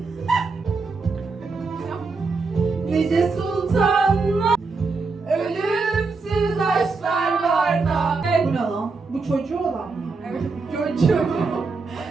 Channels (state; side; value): quieter; left; 4.2 dB